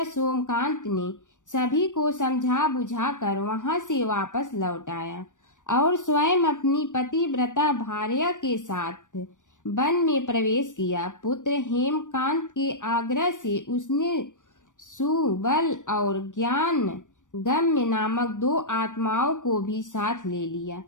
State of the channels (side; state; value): right; late; 0.87 ms